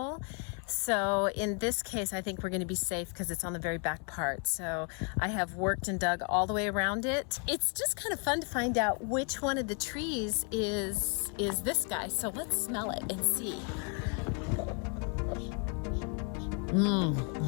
So in this case, I think we're going to be safe because it's on the very back part. So I have worked and dug all the way around it. It's just kind of fun to find out which one of the trees is this guy. So let's smell it and see.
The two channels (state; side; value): quieter; right; 37.4 dB